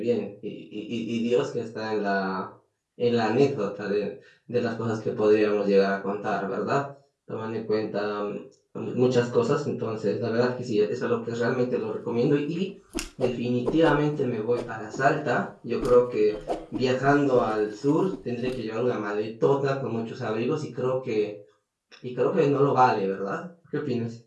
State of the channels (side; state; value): both; identical; correlation 1.00